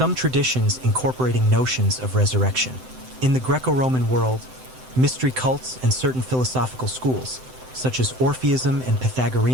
traditions incorporating notions of resurrection. In the Greco-Roman world, mystery cults and certain philosophical schools, such as Orpheism and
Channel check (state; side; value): late; left; 7.8 ms